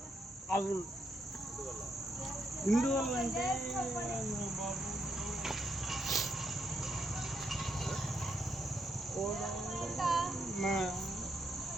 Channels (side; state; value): both; normal; correlation 0.78